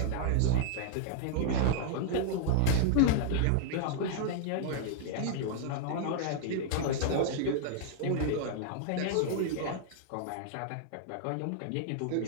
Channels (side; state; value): both; different; correlation -0.01